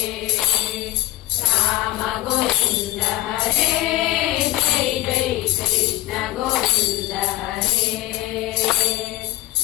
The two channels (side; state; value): right; quieter; 16.3 dB